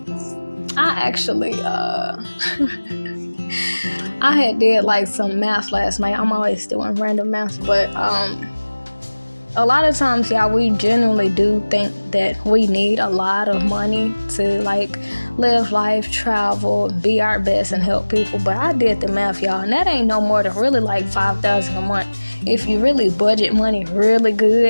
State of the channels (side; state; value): both; inverted; correlation -1.00